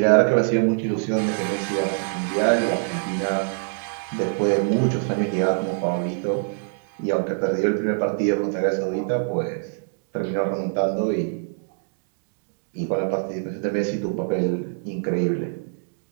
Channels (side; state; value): left; silent; 62 dB below the other